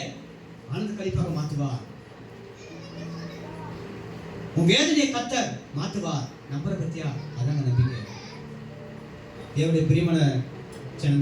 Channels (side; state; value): both; identical; correlation 1.00